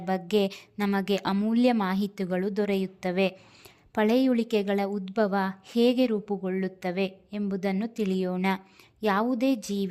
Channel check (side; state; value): both; identical; correlation 1.00